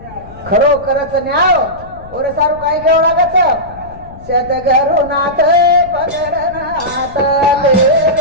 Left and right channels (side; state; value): left; noise; rumble, 18 dB below the sound